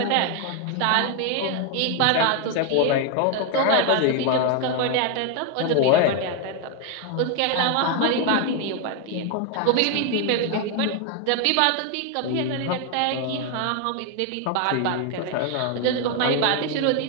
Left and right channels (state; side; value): different; both; correlation 0.01